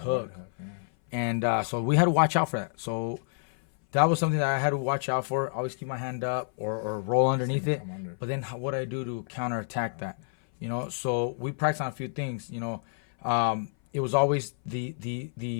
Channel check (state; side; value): silent; right; 57 dB below the other